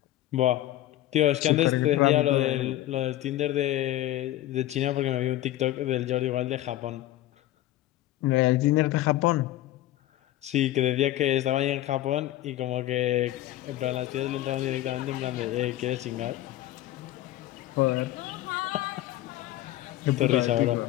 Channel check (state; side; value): quieter; right; 14.6 dB